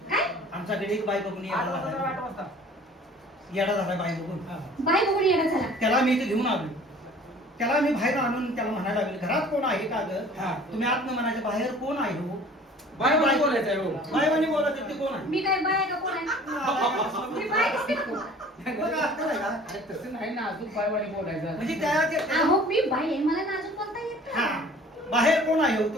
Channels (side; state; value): both; normal; correlation 0.49